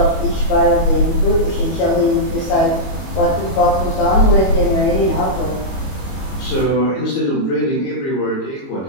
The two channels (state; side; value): late; right; 21 ms